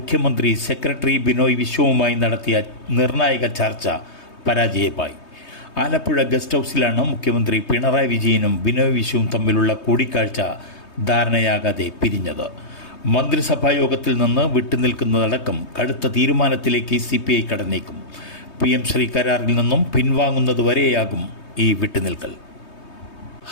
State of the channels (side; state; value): right; late; 3.2 ms